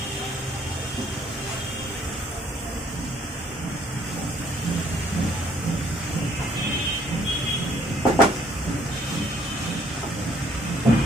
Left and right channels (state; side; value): normal; both; correlation 0.63